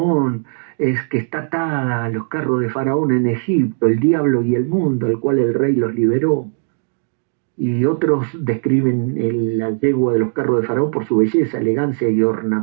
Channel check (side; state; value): left; silent; digital silence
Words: es que está atada a los carros de Faraón en Egipto, el diablo y el mundo, al cual el rey los liberó. Y otros describen la yegua de los carros de Faraón por su belleza, elegancia y